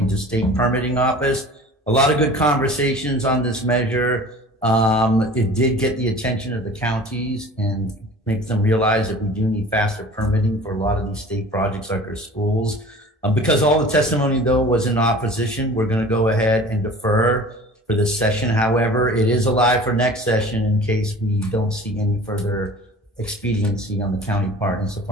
to state permitting office. A lot of good conversations on this measure. It did get the attention of the counties and make them realize that we do need faster permitting for a lot of these state projects like our schools. Because all the testimony, though, was in opposition, we're going to go ahead and defer for this session. However, it is alive for next session in case we don't see any further expediency on the county part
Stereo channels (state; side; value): normal; both; correlation 0.43